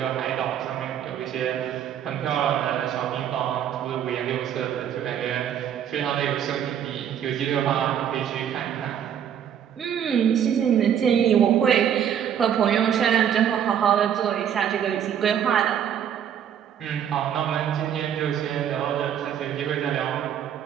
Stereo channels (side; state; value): left; quieter; 9.2 dB